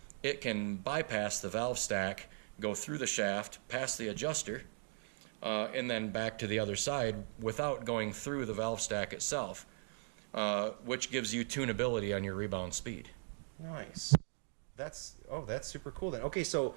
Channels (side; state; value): left; silent; digital silence